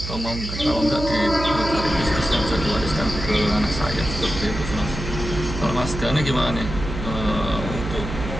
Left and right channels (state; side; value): noise; right; hum, 7 dB below the sound